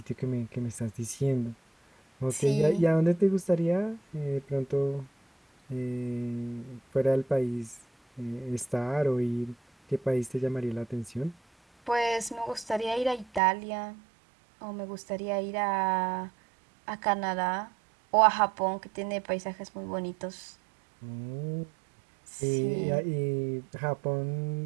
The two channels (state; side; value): drops out; left; at 13.4 s